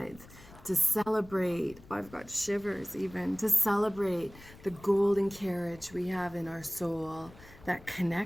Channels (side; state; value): left; noise; rumble, 21 dB below the sound